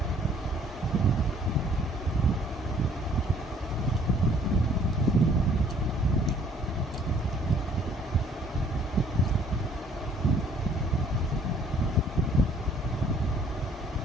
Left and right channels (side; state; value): both; normal; correlation 0.59